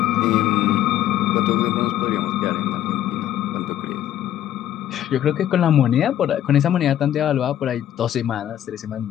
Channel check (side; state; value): right; quieter; 11.8 dB